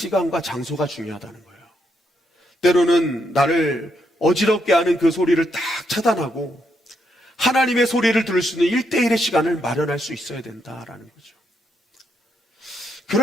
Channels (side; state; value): both; normal; correlation 0.78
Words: 장소가 중요하다는 거예요. 때로는 나를 어지럽게 하는 그 소리를 딱 차단하고 하나님의 소리를 들을 수 있는 1대1의 시간을 마련할 수 있어야 된다라는 거죠.